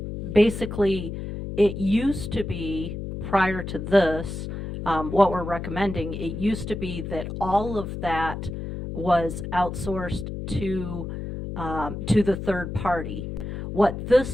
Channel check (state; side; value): noise; left; hum, 6 dB below the sound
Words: basically, it used to be, prior to this, what we're recommending, it used to be that all of that was outsourced to the third party. What